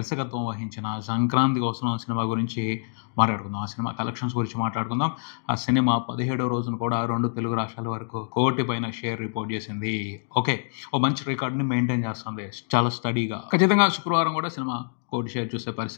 వహించిన సంక్రాంతిగా వస్తున్న సినిమా గురించి మాట్లాడుకుందాం. ఆ సినిమా కలెక్షన్స్ గురించి మాట్లాడుకుందాం. ఆ సినిమా 17వ రోజున కూడా 2 తెలుగు రాష్ట్రాల వరకు 1 కోటి పైన షేర్ రిపోర్ట్ చేసింది. ఓకే, ఓ మంచి రికార్డ్ని మెయింటైన్ చేస్తుంది చాలా స్టడీగా. ఖచ్చితంగా శుక్రవారం కూడా సినిమా 1 కోటి షేర్ చూసే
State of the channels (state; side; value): silent; right; digital silence